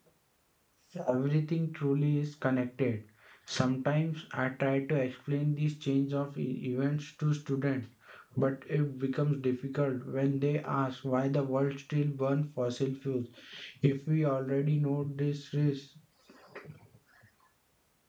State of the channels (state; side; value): identical; both; correlation 1.00